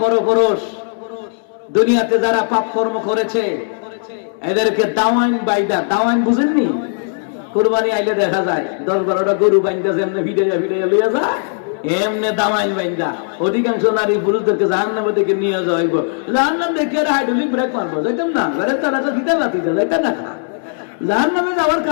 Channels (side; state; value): right; silent; 67 dB below the other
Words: পরপুরুষ দুনিয়াতে যারা পাপ কর্ম করেছে, এদেরকে দাওয়াইন বাইদা, দাওয়াইন বুঝেননি? কুরবানি আইলে দেখা যায় 10-12টা গরু বাইন্দা যেমনে ভিড়াইয়া লইয়া যায়, এমনে দাওয়াইন বাইন্দা অধিকাংশ নারী পুরুষদেরকে জাহান্নামের দিকে নিয়ে যাওয়া হইব। জাহান্নাম দেখে হাইড্রোলিক ব্রেক মারবো, যাইতাম না, ঘরে তারা তো দিতে পারতি, যাইতাম না। জাহান্নামে যাওয়ার